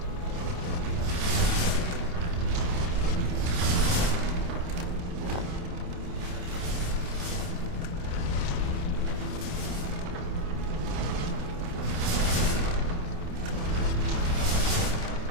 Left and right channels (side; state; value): left; late; 28 ms